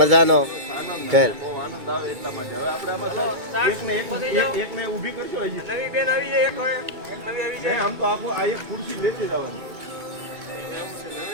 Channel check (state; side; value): late; left; 2.2 ms